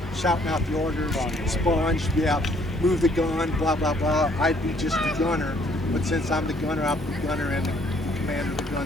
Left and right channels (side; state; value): both; normal; correlation 0.64